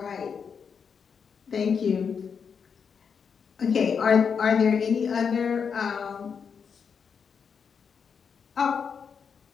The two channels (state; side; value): quieter; right; 6.4 dB